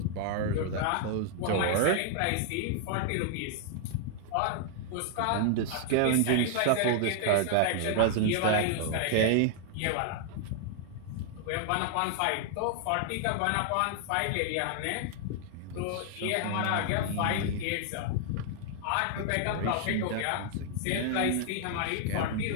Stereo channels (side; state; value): both; different; correlation 0.00